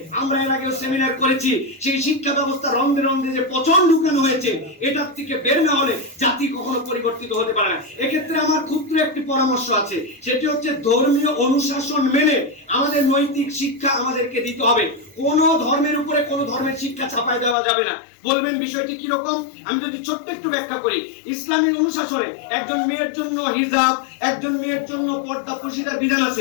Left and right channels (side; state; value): right; drops out; at 17.6 s